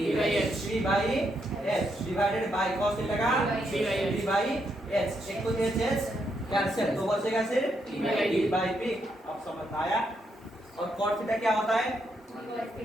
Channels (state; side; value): normal; both; correlation 0.79